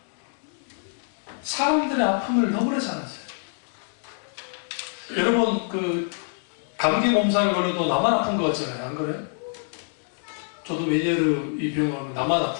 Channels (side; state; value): right; silent; 61 dB below the other